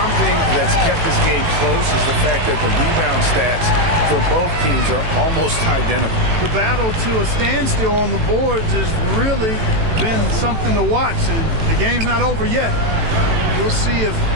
that's kept this game close is the fact that the rebound stats for both teams are almost identical. The battle to a standstill on the boards has really been something to watch, and the game's not over yet. We'll see if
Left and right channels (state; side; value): late; left; 18 ms